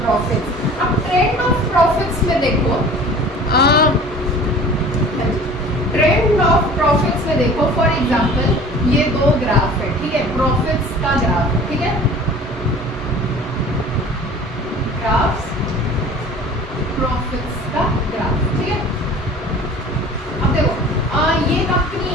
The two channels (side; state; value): both; normal; correlation 0.44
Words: प्रॉफिट्स। अब ट्रेंड ऑफ प्रॉफिट्स में देखो, ट्रेंड ऑफ प्रॉफिट्स में देखो, फॉर एग्जांपल ये दो ग्राफ है, ठीक है, प्रॉफिट्स का ग्राफ है, ठीक है, ग्राफ्स, प्रॉफिट्स का ग्राफ, ठीक है। अब देखो, ये कंपनी